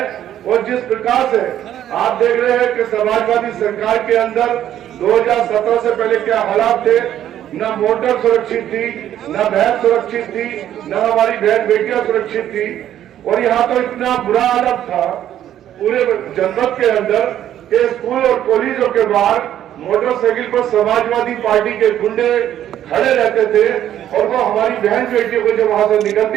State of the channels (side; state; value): left; quieter; 11.3 dB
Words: और जिस प्रकार से आप देख रहे हैं कि समाजवादी सरकार के अंदर 2017 से पहले क्या हालात थे, न मोटर सुरक्षित थी, न बहन सुरक्षित थी, न हमारी बहन बेटियां सुरक्षित थी। और यहाँ तो इतना बुरा हालत था पूरे जनपद के अंदर कि स्कूल और कॉलेजों के बाहर मोटरसाइकिल पर समाजवादी पार्टी के गुंडे खड़े रहते थे और वो हमारी बहन बेटियों को जब वहां से